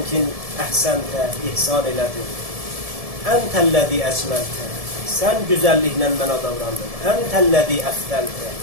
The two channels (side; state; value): left; late; 1.7 ms